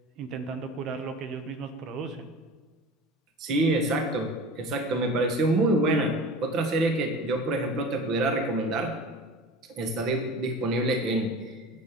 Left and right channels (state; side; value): normal; both; correlation 0.36